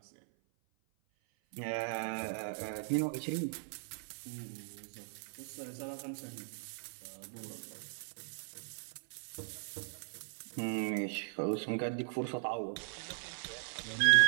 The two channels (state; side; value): silent; left; 52 dB below the other